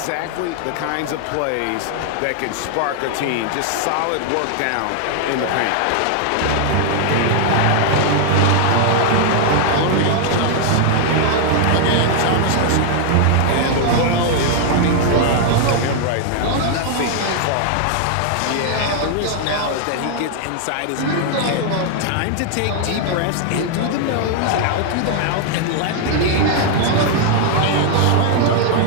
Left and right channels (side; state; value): both; different; correlation 0.00